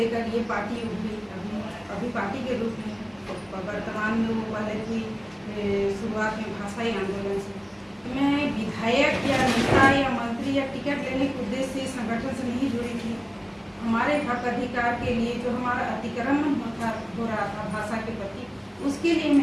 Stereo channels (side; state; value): both; identical; correlation 1.00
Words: ये पार्टी उठी अभी पार्टी के रूप में वर्तमान में वो पहले थी शुरुआत में भाषाई आंदोलन से। मैं विधायक या नेता या मंत्री या टिकट लेने के उद्देश्य से संगठन से नहीं जुड़ी थी। हमारे हक अधिकार के लिए जो हमारा अतिक्रमण हो रहा था भाषा के प्रति, उसके लिए